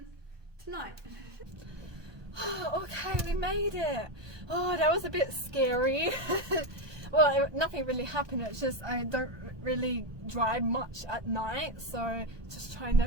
tonight. Oh, okay, we made it. Oh, that was a bit scary. well, nothing really happened. It's just I don't really drive much at night, so just trying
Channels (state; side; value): late; left; 1.2 ms